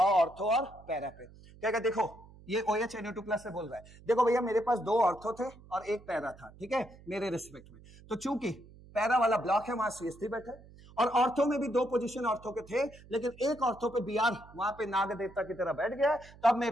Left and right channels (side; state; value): right; noise; hum, 22 dB below the sound